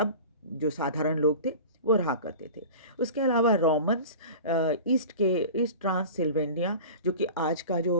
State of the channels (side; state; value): both; inverted; correlation -0.36